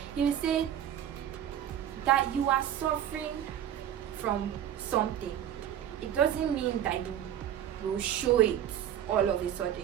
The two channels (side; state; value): left; quieter; 10.6 dB